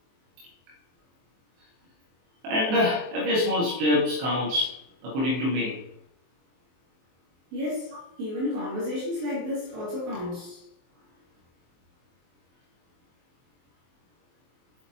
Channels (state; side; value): late; left; 23 ms